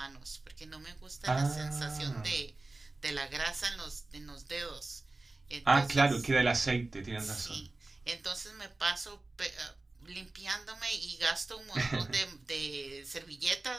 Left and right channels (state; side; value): quieter; left; 3.1 dB